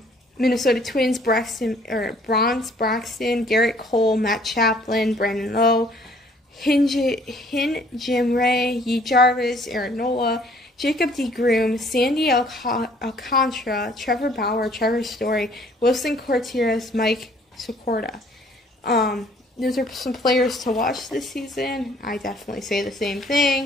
Minnesota Twins, Bronze Braxton, Garrett Cole, Matt Chaplin, Brandon Lowe, Jim Ray, Yi Jarvis, Aaron Nola, Jacob DeGrom, Sandy Alcantara, Trevor Bauer, Trevor Story, Wilson Contreras, Mike Socorda. Those are some players to watch this season. I definitely say the same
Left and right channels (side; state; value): both; normal; correlation 0.59